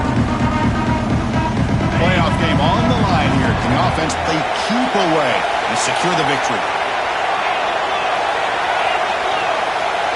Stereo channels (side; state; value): both; identical; correlation 1.00